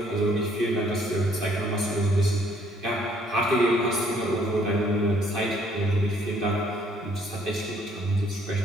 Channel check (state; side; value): normal; both; correlation 0.64